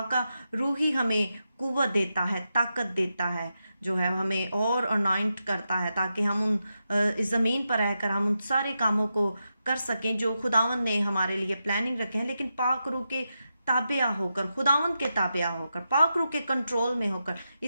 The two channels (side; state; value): both; inverted; correlation -0.87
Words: का रूह ही हमें कुव्वत देता है, ताकत देता है, जो है हमें और अनॉइंट करता है ताकि हम इस ज़मीन पर रहकर हम उन सारे कामों को कर सकें जो खुदावंद ने हमारे लिए प्लानिंग रखे हैं। लेकिन पाक रूह के ताबिया होकर, खुदावंद के ताबिया होकर, पाक रूह के कंट्रोल में होकर।